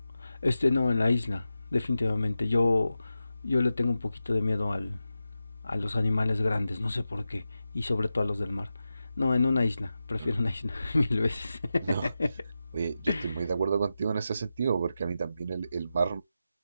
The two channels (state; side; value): inverted; both; correlation -0.91